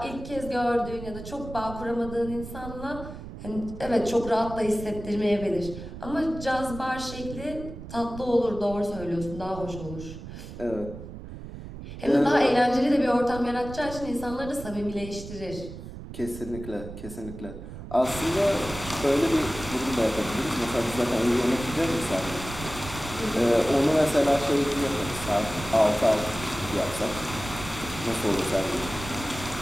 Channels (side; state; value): right; noise; rumble, 11 dB below the sound